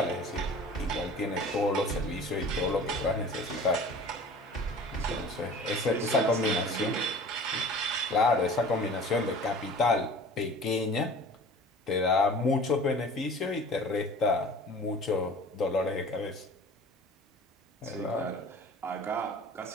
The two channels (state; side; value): normal; both; correlation 0.43